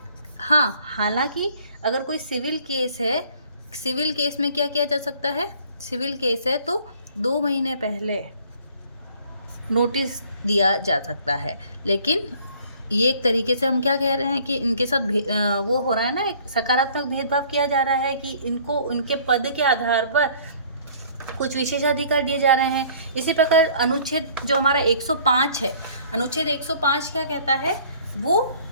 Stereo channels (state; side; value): inverted; both; correlation -0.55